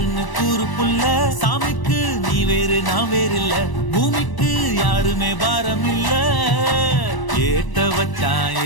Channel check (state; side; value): late; right; 1.0 ms